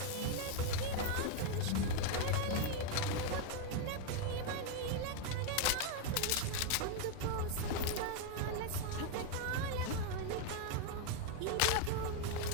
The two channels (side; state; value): both; different; correlation 0.01